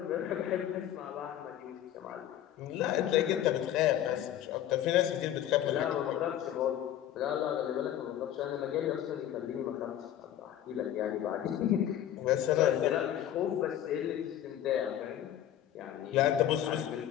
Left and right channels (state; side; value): quieter; right; 11.4 dB